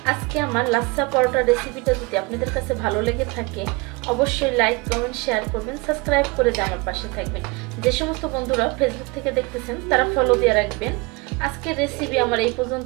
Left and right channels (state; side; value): quieter; left; 26.9 dB